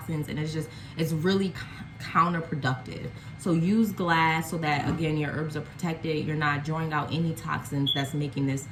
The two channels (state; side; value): identical; both; correlation 1.00